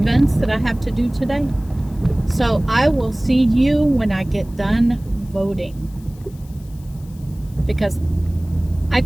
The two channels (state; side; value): noise; left; hiss, 27 dB below the sound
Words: that I have to do today. So I will see you when I get done voting, because I